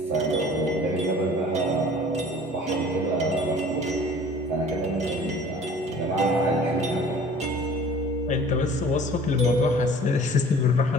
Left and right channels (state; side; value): normal; both; correlation 0.47